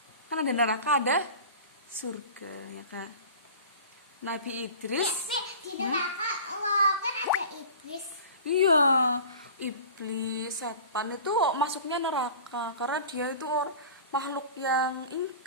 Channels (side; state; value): both; inverted; correlation -0.40